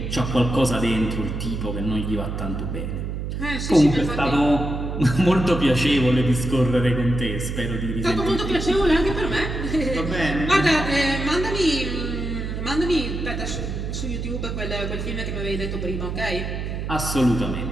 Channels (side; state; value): right; noise; hum, 4 dB below the sound